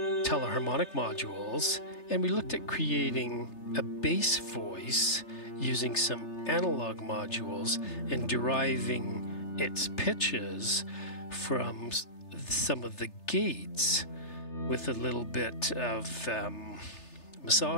teleharmonic modules, and we looked at creating a bass voice using some analog modules and deriving its pitches from some of the gates with a little bit of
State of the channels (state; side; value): late; right; 3.3 ms